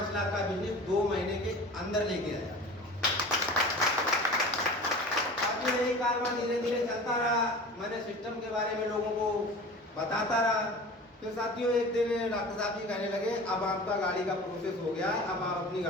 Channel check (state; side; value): normal; both; correlation 0.37